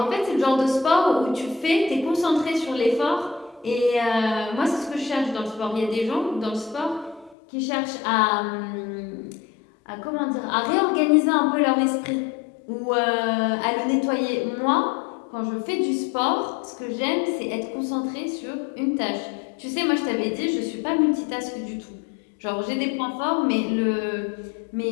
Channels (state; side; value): drops out; right; at 7.4 s